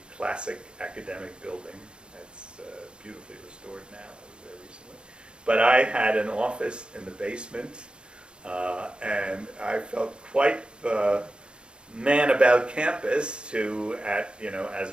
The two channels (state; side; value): late; left; 0.053 ms